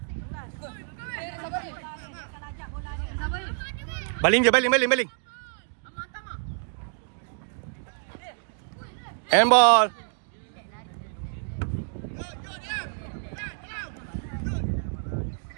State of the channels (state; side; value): silent; left; 57 dB below the other